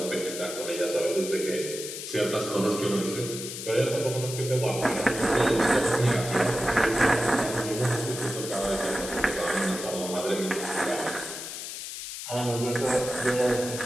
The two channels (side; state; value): left; noise; hiss, 8 dB below the sound